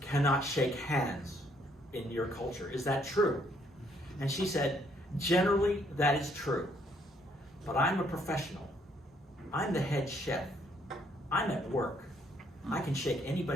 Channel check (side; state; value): both; normal; correlation 0.68